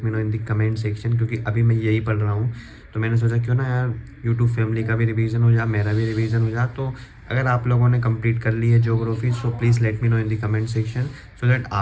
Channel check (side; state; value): both; identical; correlation 1.00